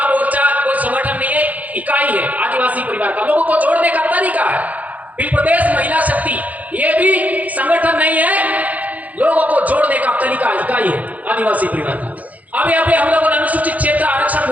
मोर्चा कोई संगठन नहीं है, इकाई है आदिवासी परिवार का, लोगों को जोड़ने का तरीका है। बिल प्रदेश महिला शक्ति, ये भी संगठन नहीं है, लोगों को जोड़ने का तरीका इकाई है आदिवासी परिवार का। अभी अभी हम लोगों ने अनुसूचित क्षेत्र आरक्षण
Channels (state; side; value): late; left; 0.076 ms